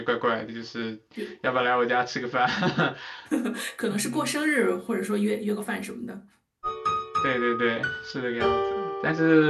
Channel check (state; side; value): identical; both; correlation 1.00